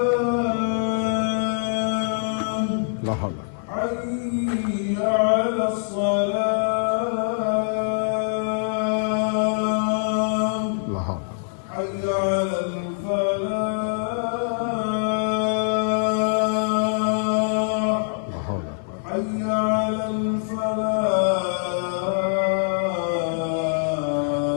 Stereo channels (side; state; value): right; silent; digital silence